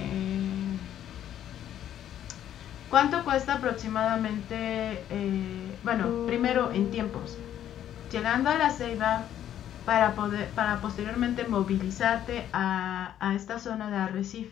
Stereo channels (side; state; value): right; quieter; 10.9 dB